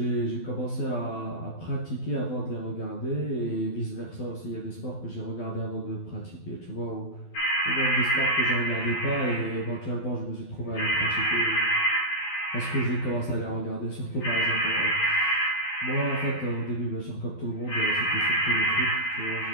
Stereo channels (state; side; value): late; right; 12 ms